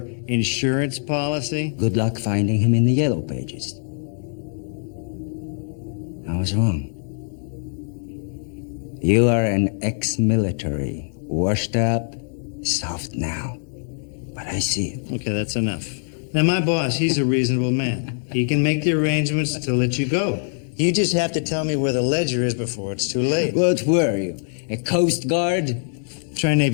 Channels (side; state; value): right; silent; 63 dB below the other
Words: insurance policy? Good luck finding him in the yellow pages. I was wrong. You are an ex-military, washed up, soft now. But I see it. Okay, that's enough. Now, my boss, he's a reasonable man. He can make the arrangements to let you go. You just have to tell me where the ledger is before it's too late. What were you? A Coast Guard? Try